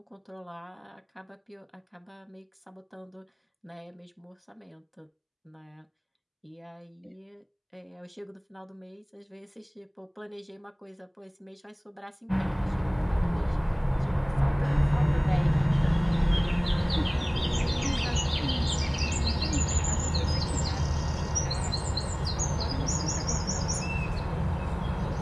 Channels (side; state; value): both; identical; correlation 1.00